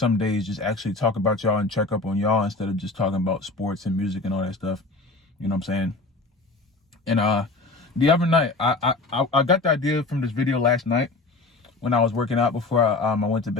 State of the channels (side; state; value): right; quieter; 3.4 dB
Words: days just actually talk about y'all and check up on y'all instead of just talking about sports and music and all that stuff. You know what I'm saying? And the other night, I got the idea from this video last night when I was working out before I went to